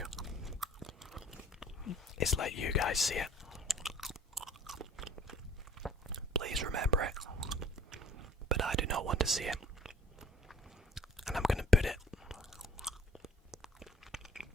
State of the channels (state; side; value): normal; both; correlation 0.53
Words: is let you guys see it. Please remember it, but I do not want to see it. And I'm going to put it